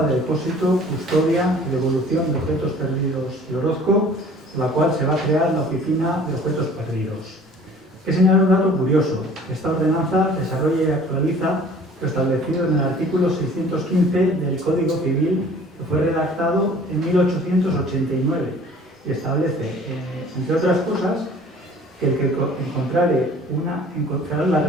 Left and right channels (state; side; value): normal; both; correlation 0.50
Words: de depósito, custodia y devolución de objetos perdidos de Orozco, por la cual se va a crear la Oficina de Objetos Perdidos. Hay que señalar un dato curioso. Esta ordenanza desarrolla y actualiza lo establecido en el artículo 615 del Código Civil, que fue redactado en 1889, y establece, entre otras cosas, que el que encontrare la